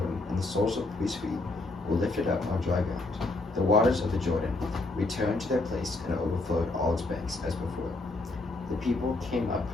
and the soles of the priests' feet were lifted up on dry ground. The waters of the Jordan returned to their place and overflowed all its banks as before. The people came up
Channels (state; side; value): quieter; right; 3.1 dB